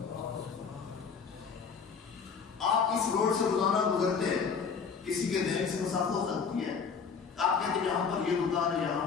آپ اس روڈ سے روزانہ گزرتے ہیں، کسی کے ذہن سے مسخ ہو سکتی ہے، آپ کہتے ہیں یہاں پر یہ دکان ہے، یہاں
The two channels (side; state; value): right; quieter; 5.9 dB